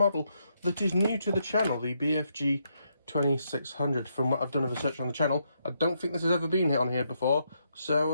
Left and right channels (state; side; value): inverted; both; correlation -0.78